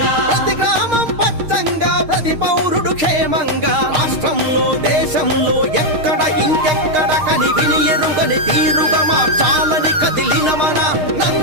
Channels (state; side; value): late; left; 6.5 ms